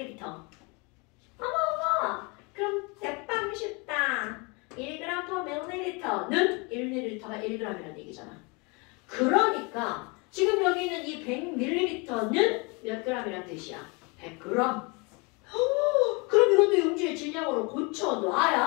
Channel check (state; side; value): quieter; right; 29.7 dB